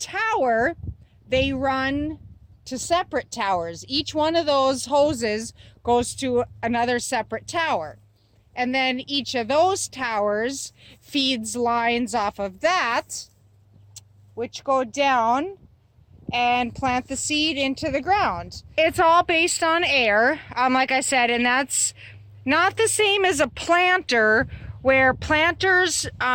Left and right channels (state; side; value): identical; both; correlation 1.00